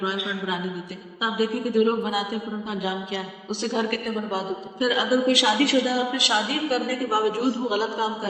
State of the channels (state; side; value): identical; both; correlation 1.00